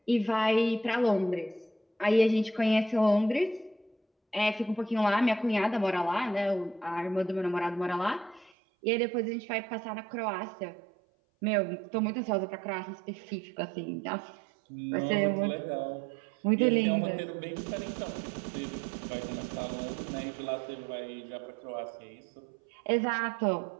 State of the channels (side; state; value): left; drops out; at 8.5 s